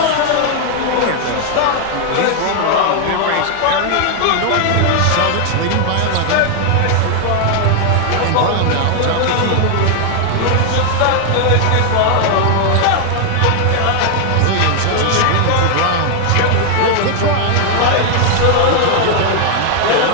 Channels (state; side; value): different; both; correlation 0.00